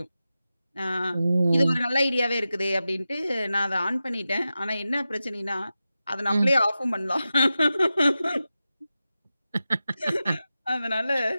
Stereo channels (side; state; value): both; inverted; correlation -0.93